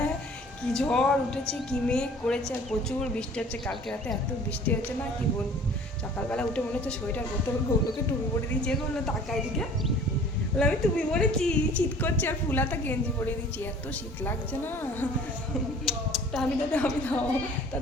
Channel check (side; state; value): both; normal; correlation 0.49